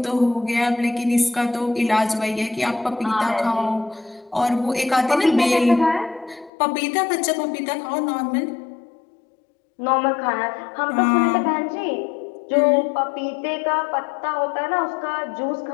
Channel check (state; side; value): drops out; right; at 6.5 s